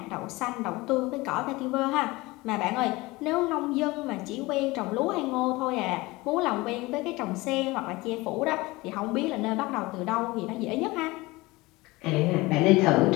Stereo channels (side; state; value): right; quieter; 21.7 dB